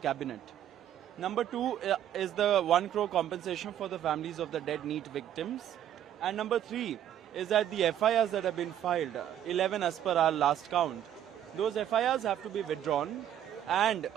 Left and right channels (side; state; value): left; quieter; 10.8 dB